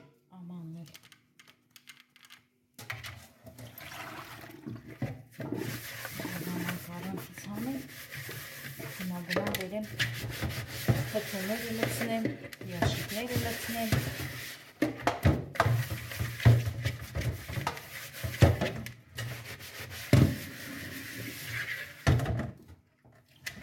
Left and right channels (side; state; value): both; identical; correlation 1.00